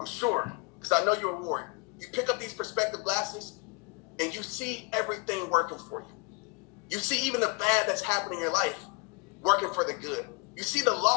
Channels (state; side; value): quieter; right; 29.5 dB